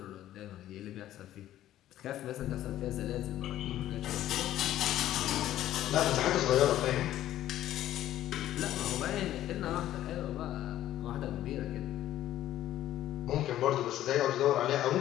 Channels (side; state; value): right; quieter; 13.0 dB